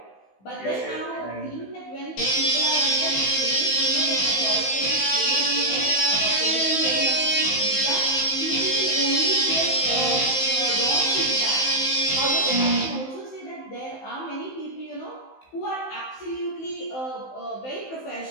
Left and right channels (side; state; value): right; late; 15 ms